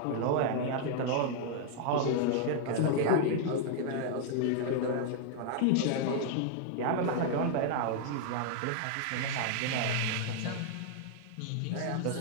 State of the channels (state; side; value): different; both; correlation 0.00